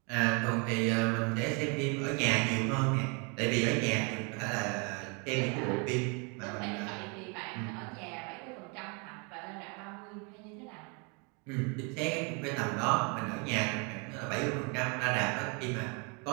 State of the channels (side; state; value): left; quieter; 33.3 dB